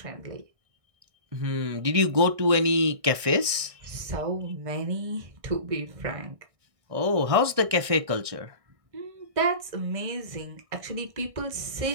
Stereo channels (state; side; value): late; left; 1.6 ms